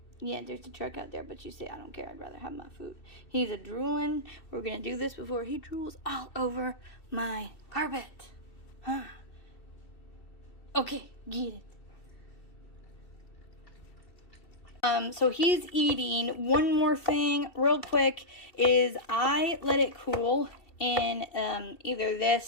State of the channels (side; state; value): right; late; 2.7 ms